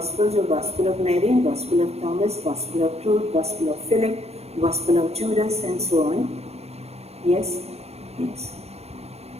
are Gospel of Mary, Gospel of Thomas, Gospel of Truth, Gospel of Philip, Gospel of Judas, and so on. Yes? Yes.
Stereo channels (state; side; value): late; left; 0.30 ms